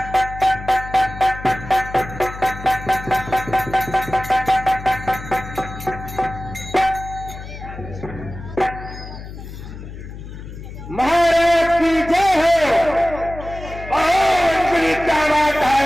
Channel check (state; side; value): noise; left; hum, 12 dB below the sound